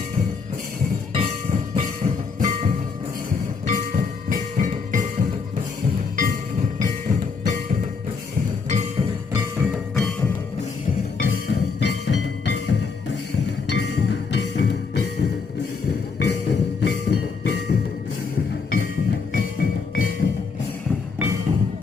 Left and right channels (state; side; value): quieter; right; 5.1 dB